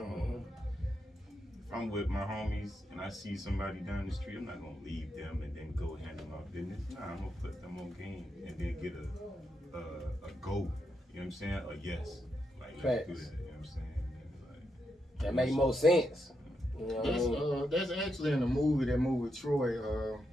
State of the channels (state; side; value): normal; both; correlation 0.83